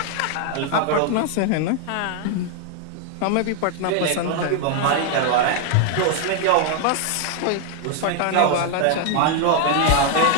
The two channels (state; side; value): different; both; correlation 0.00